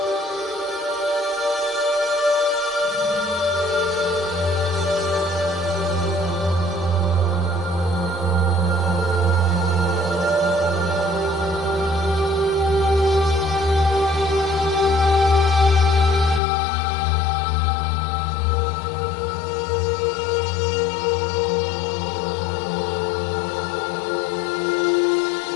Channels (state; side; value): drops out; right; at 16.4 s